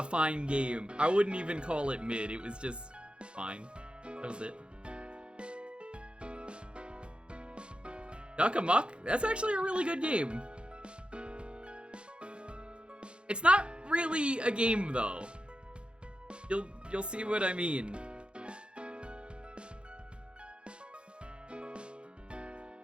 fine game. I wouldn't even call it mid. It was just fine. That was it. Duck Amuck? That's actually a really good game. It's not really a game though. You'll see what I mean.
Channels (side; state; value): left; late; 0.056 ms